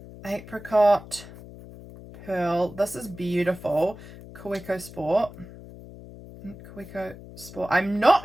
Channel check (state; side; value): noise; left; hum, 16 dB below the sound